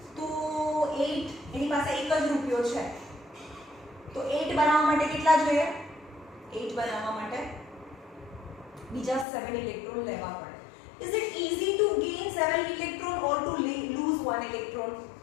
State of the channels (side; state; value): right; drops out; at 9.2 s